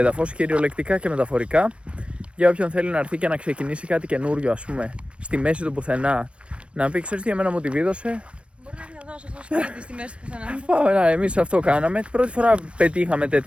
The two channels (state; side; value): late; left; 0.060 ms